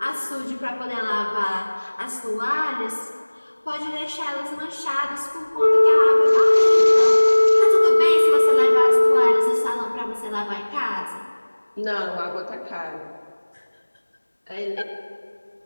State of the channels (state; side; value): inverted; both; correlation -1.00